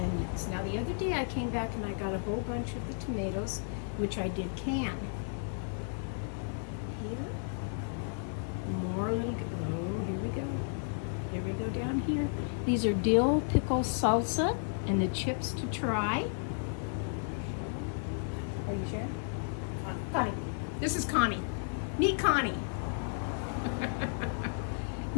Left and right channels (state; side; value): silent; right; 56 dB below the other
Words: Now the other day I came back and I got a whole bunch of the tomatoes, which I did can. Here, more little, oh, here we go. Here we go down here. These are dill pickle salsa and the chips to try. Are you sure? Connie. This is Connie. Meet Connie.